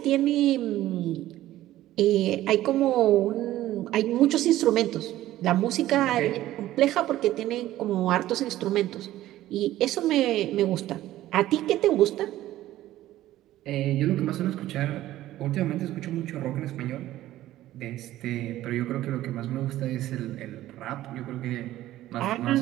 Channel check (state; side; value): quieter; left; 14.6 dB